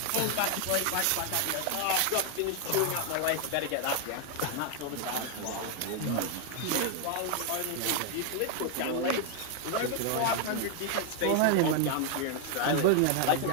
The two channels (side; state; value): both; different; correlation 0.00